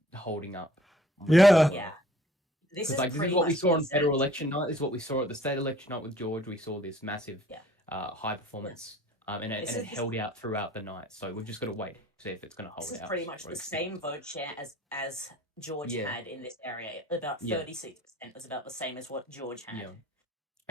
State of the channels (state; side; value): normal; both; correlation 0.55